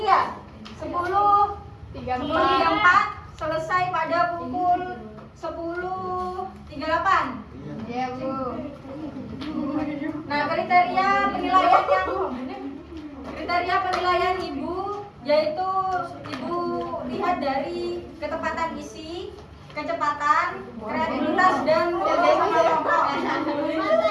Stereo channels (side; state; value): both; identical; correlation 1.00